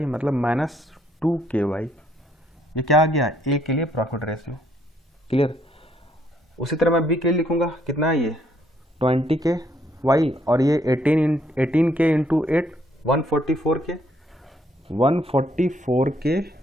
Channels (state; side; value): normal; both; correlation 0.69